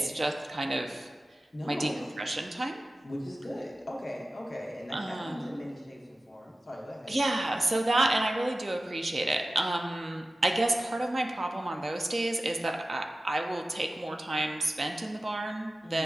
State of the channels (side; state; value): both; normal; correlation 0.96